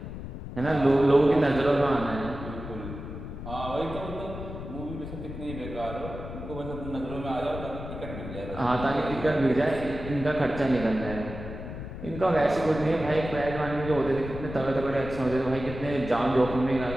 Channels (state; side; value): noise; left; rumble, 9 dB below the sound